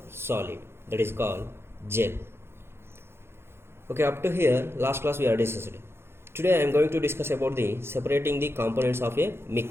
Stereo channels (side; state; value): left; late; 0.12 ms